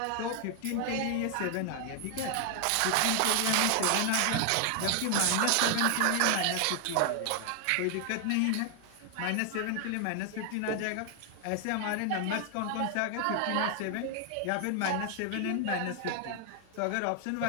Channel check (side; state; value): both; different; correlation 0.00